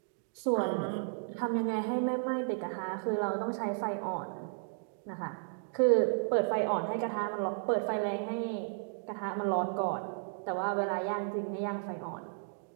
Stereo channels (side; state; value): left; silent; digital silence